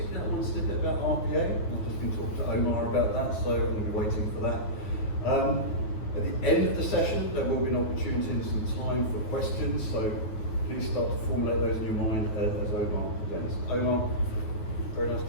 I want to say a bit about RPA. I've just been talking to Omar about that, so I'm going to be waiting for that. At the end of the session, there will be an opportunity and some time for questions, so please start to formulate those in your mind as Omar presents. Omar, very nice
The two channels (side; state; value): right; late; 9.3 ms